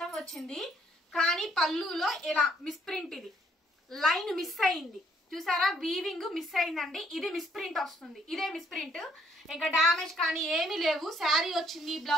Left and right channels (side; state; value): both; normal; correlation 0.67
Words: వచ్చింది. కానీ పళ్ళులో ఇలా మిస్ప్రింట్, ఇది లైన్ మిస్ అయింది చూసారా, వీవింగ్ మిస్ అయిందండి. ఇది మిస్ప్రింట్ వస్తుంది, ఇదే మిస్ప్రింట్. ఇంకా డామేజ్ కానీ ఏమీ లేవు. శారీ వచ్చింది,